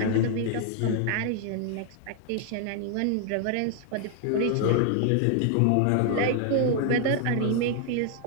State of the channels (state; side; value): different; both; correlation 0.00